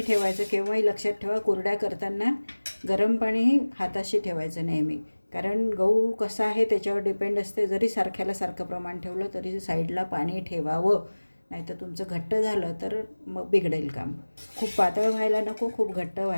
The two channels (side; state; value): both; inverted; correlation -1.00